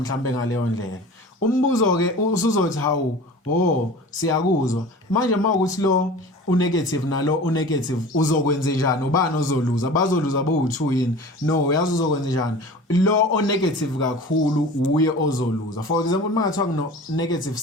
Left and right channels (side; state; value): both; normal; correlation 0.39